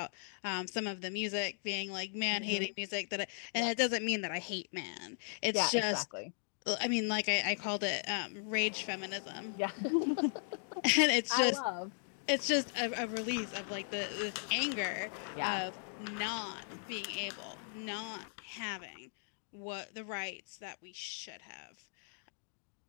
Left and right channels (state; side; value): silent; right; digital silence